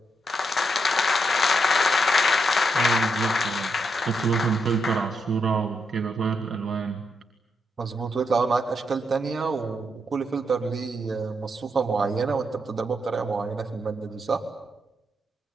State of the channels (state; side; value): normal; both; correlation 0.81